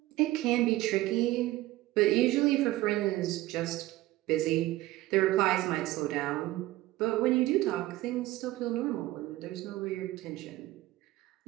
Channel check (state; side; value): quieter; left; 17.2 dB